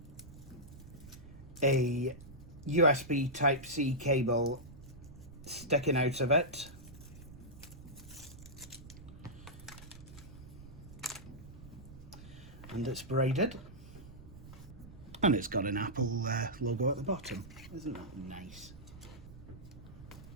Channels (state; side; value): noise; right; rumble, 16 dB below the sound